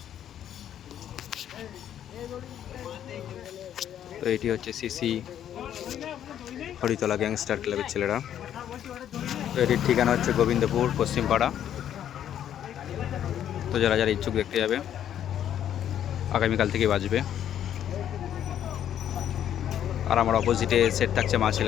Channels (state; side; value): quieter; right; 10.3 dB